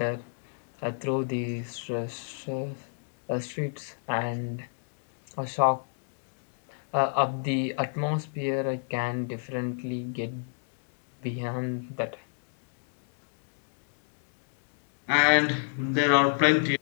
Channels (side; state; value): right; silent; digital silence